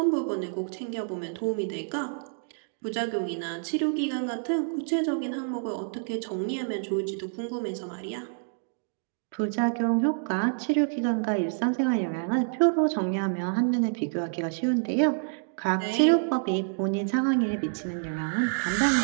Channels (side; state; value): left; silent; digital silence